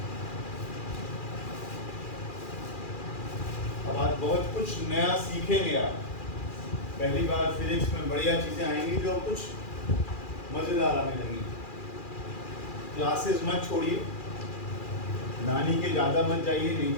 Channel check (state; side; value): late; right; 2.4 ms